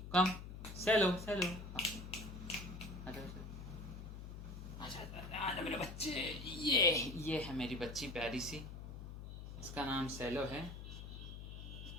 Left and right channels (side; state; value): left; noise; hum, 9 dB below the sound